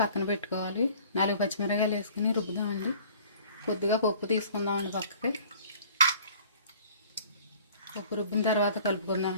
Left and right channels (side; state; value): both; inverted; correlation -0.51